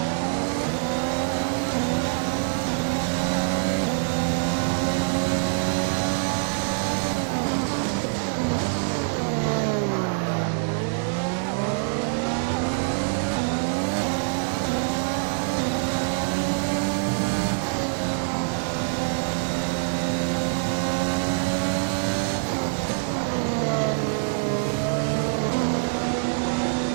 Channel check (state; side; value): silent; left; digital silence